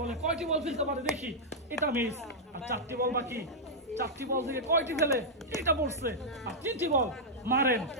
কয়টি বল ফেলতে পারে দেখি। এটা মিস। আর 4টি বল বাকি। 4টি বল থেকে কয়টি ফেলে, এটা পড়ছে। আর 3টি বল মারেন,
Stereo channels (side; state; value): both; normal; correlation -0.06